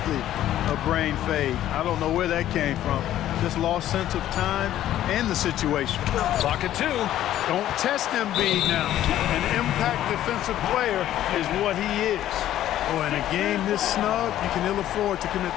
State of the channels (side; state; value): right; quieter; 12.5 dB